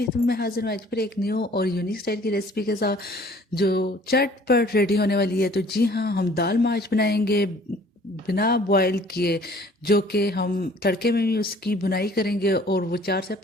खिदमत में हाजिर हैं आज फिर एक न्यू और यूनिक स्टाइल की रेसिपी के साथ जो चटपट रेडी होने वाली है। तो जी हाँ, हम दाल माश बनाएंगे बिना बॉयल किए, जो कि हम तड़के में भी उसकी बुनाई करेंगे और वो 4 से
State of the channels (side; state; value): both; normal; correlation 0.54